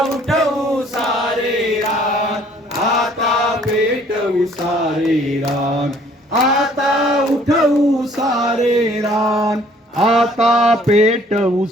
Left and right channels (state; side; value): normal; both; correlation 0.59